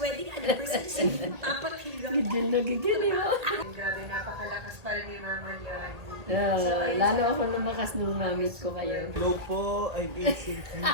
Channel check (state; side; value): late; left; 1.8 ms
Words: anniversary sa Papa Kilo. Gigil na gigil yun. Grabe, napakalakas pa rin ni Mama Leon. Lalo ako lumakas nung mamit ko kayo. Hello po, I'm Asian